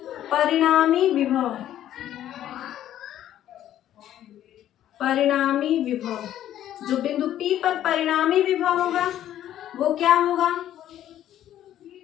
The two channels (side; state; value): right; quieter; 11.9 dB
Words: परिणामी विभव, जो बिंदु P पर परिणामी विभव होगा वो क्या होगा,